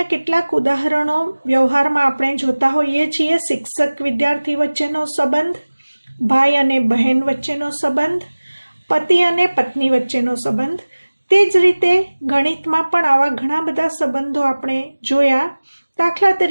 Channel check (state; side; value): inverted; both; correlation -1.00